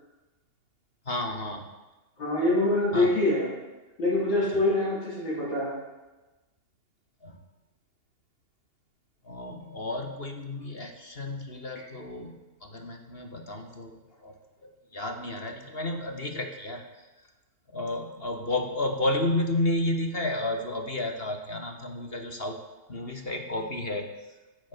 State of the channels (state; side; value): late; right; 2.8 ms